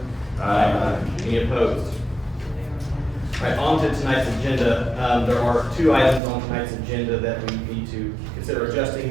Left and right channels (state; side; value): drops out; left; at 6.2 s